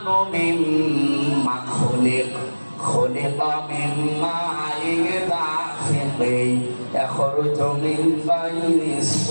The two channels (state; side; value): inverted; both; correlation -1.00